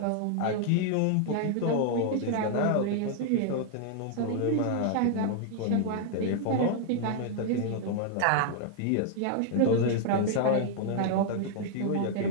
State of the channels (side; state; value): both; different; correlation 0.00